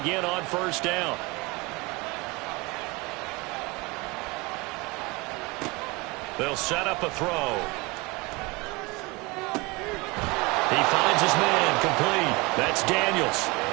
on 1st down. They'll set up a throw. He finds his man, complete. That's Daniels.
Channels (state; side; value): quieter; left; 25.3 dB